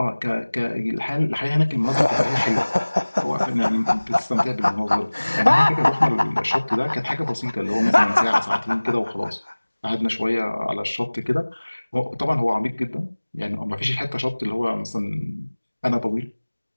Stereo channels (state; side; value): inverted; both; correlation -1.00